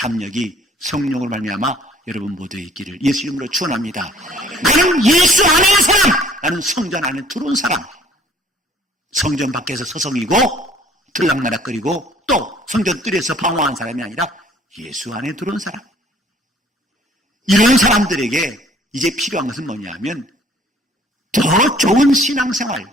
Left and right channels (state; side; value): normal; both; correlation 0.55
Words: 성령으로 말미암아 여러분 모두에 있기를 예수 이름으로 축원합니다. 나는 예수 안에 있는 사람, 나는 성전 안에 들어온 사람. 성전 밖에서 서성이고 들락날락거리고 또 성전 뜰에서 방황한 사람이 아니라 예수 안에 들어온 사람. 이런 사람들에게 이제 필요한 것은 뭐냐면 더 좋은 신앙생활,